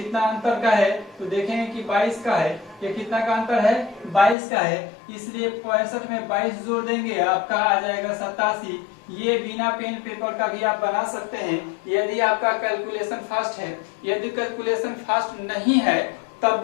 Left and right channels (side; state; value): right; drops out; at 4.4 s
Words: अंतर का है, तो देखेंगे कि 22 का है। ये कितना का अंतर है? 22 का है। इसलिए 65 में 22 जोड़ देंगे, आपका आ जाएगा 87। ये बिना पेन पेपर का भी आप बना सकते हैं यदि आपका कैलकुलेशन फास्ट है। यदि कैलकुलेशन फास्ट नहीं है, तब